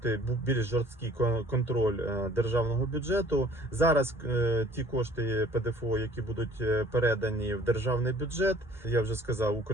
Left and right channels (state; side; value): normal; both; correlation 0.53